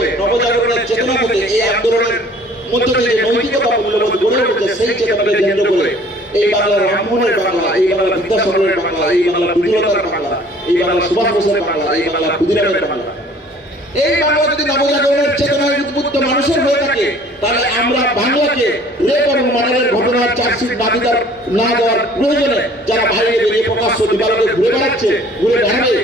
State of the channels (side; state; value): both; normal; correlation 0.53